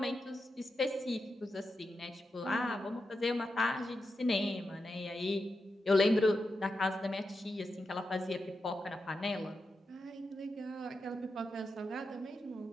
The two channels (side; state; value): both; normal; correlation 0.88